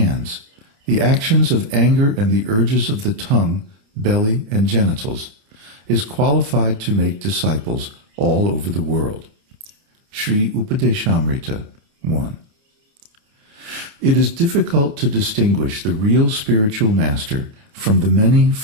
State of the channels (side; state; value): left; late; 29 ms